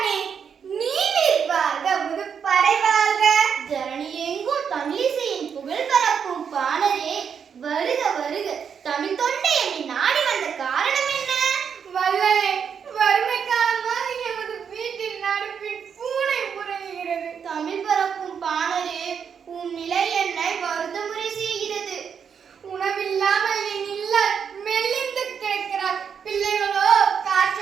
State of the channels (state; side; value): quieter; left; 7.1 dB